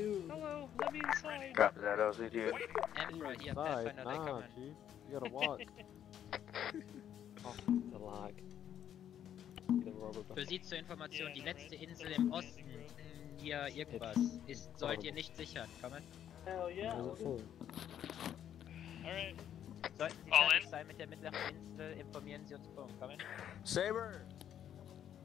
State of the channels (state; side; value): quieter; right; 10.0 dB